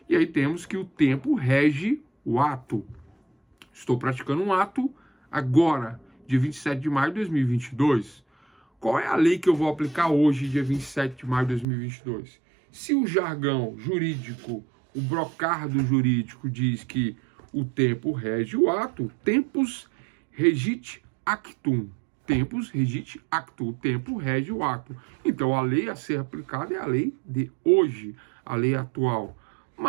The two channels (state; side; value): drops out; left; at 11.7 s